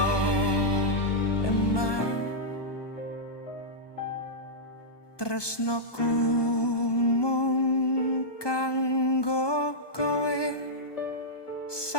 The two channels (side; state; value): right; late; 1.2 ms